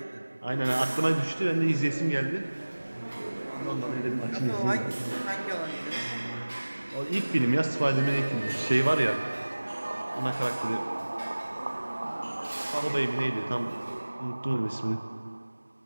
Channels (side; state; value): both; inverted; correlation -1.00